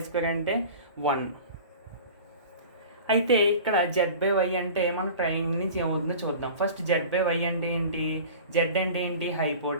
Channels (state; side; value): inverted; both; correlation -0.39